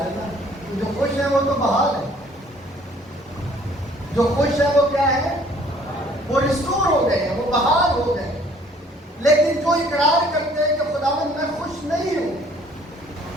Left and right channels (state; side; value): normal; both; correlation 0.57